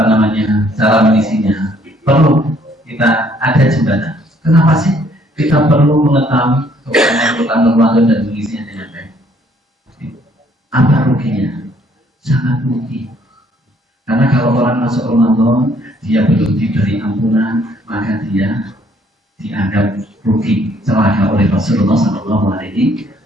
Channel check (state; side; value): normal; both; correlation 0.64